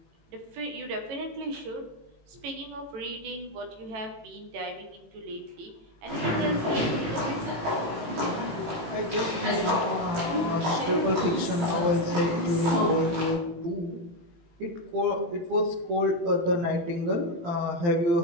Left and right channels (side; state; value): left; late; 18 ms